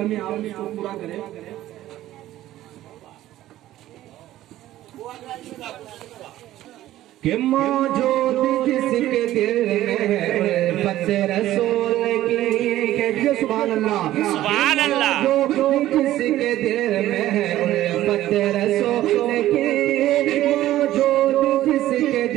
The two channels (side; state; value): left; quieter; 14.2 dB